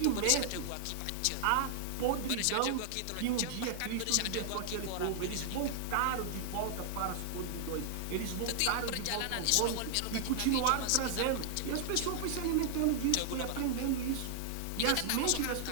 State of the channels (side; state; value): both; different; correlation -0.01